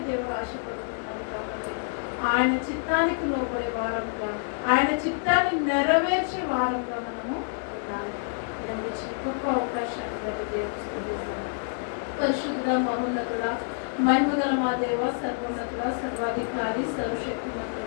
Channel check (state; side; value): silent; right; 60 dB below the other